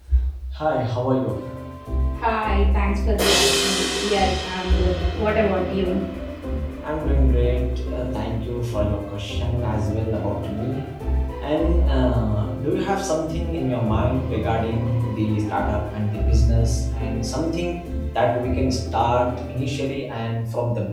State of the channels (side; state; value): both; identical; correlation 1.00